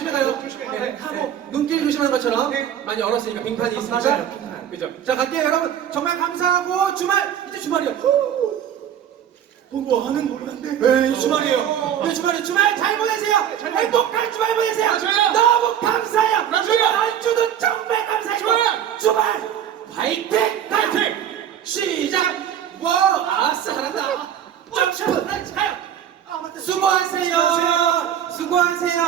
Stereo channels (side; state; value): left; quieter; 9.7 dB